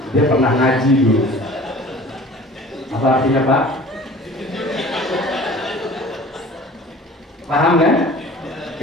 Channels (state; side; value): normal; both; correlation 0.45